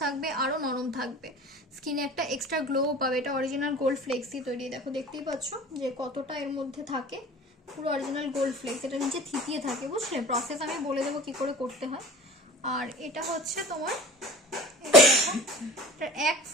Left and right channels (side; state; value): both; normal; correlation 0.41